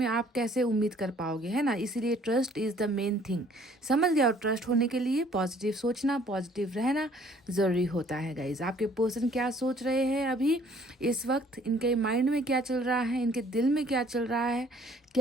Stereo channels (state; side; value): normal; both; correlation 0.58